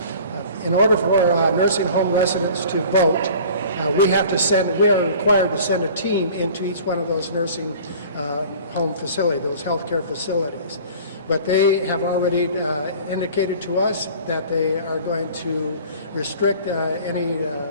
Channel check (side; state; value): both; inverted; correlation -0.45